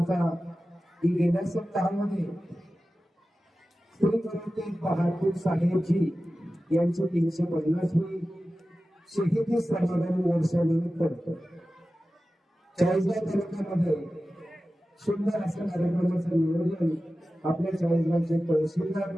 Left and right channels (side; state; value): both; normal; correlation 0.95